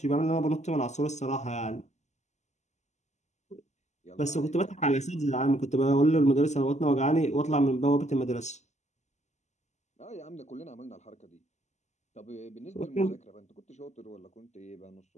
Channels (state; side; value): late; right; 0.33 ms